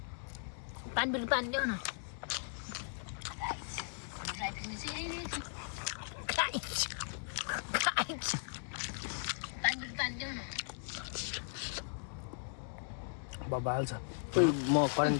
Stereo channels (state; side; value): silent; right; digital silence